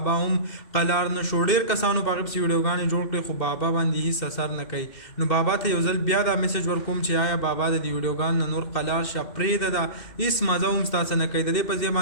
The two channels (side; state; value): right; late; 2.6 ms